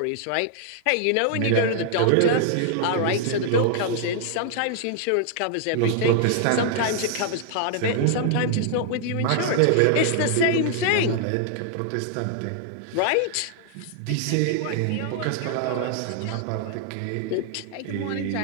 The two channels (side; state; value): both; different; correlation 0.00